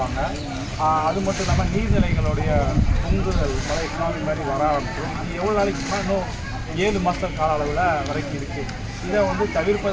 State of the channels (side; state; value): both; identical; correlation 1.00